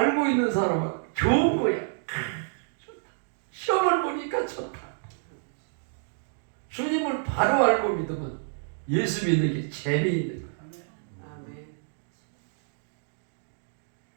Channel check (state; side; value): silent; left; digital silence